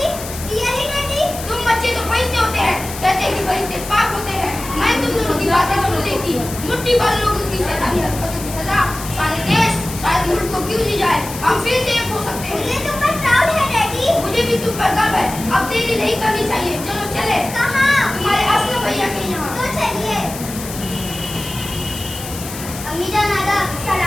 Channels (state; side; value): noise; left; hiss, 11 dB below the sound